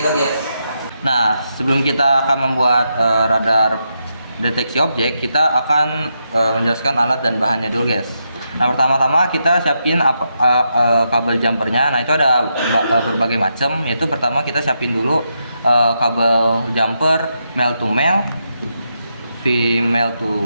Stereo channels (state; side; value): inverted; both; correlation -0.83